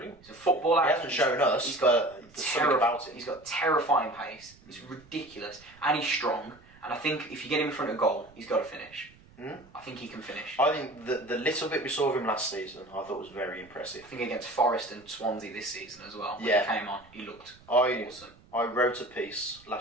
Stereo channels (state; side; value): noise; right; rumble, 26 dB below the sound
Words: He's a footballer. He hasn't shown us, he's got something about it. He's got terrifying pace. It's ridiculous. And he's strong. And I think if you get him in front of goal, he's got to finish. I think he can finish. I think the little bit we saw of him last season, I thought was very impressive. I think against Forest and Swansea this season as well. When he came on, he looked awesome. I wrote a piece